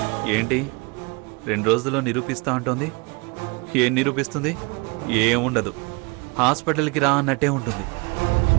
ఏంటి 2 రోజుల్లో నిరూపిస్తా అంటోంది? ఏం నిరూపిస్తుంది? ఏముండదు. హాస్పిటల్కి రా అన్నట్టే ఉంటుంది.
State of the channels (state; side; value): quieter; left; 28.7 dB